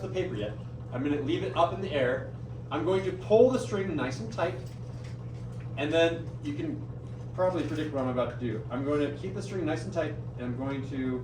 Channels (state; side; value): identical; both; correlation 1.00